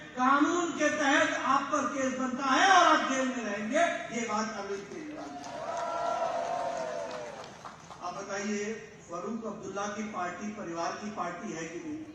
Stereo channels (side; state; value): both; identical; correlation 1.00